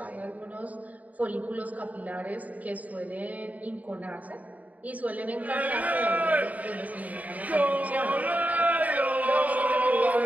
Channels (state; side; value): late; left; 0.073 ms